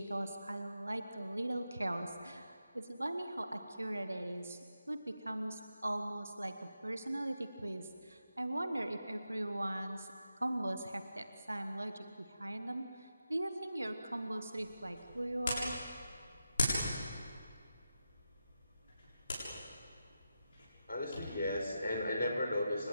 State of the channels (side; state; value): both; inverted; correlation -0.88